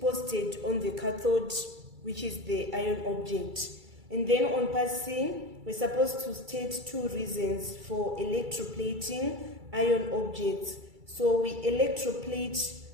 on the cathode, which is the ion object. And then on part C, we're supposed to state two reasons for electroplating ion objects. So we electroplate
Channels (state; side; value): late; left; 2.3 ms